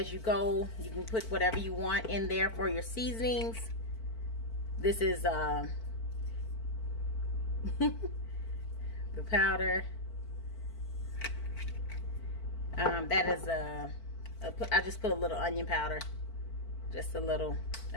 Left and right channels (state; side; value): late; right; 4.5 ms